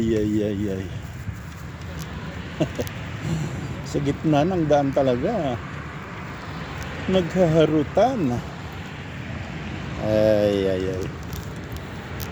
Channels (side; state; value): both; identical; correlation 1.00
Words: Sa gitna ng daan talaga naghaharutan. Ay.